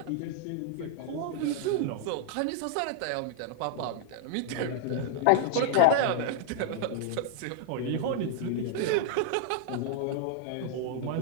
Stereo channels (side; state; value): both; different; correlation 0.00